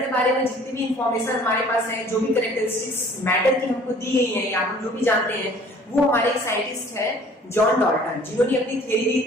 बारे में जितनी भी इंफॉर्मेशन हमारे पास है, जो भी कैरेक्टरिस्टिक्स मैटर की हमको दी गई है या हम जो भी जानते हैं, वो हमारे एक साइंटिस्ट है जॉन डाल्टन, जिन्होंने अपनी थ्योरी दी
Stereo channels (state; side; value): normal; both; correlation 0.53